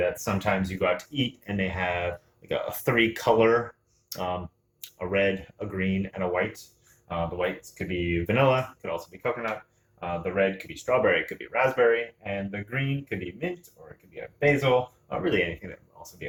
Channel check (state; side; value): identical; both; correlation 1.00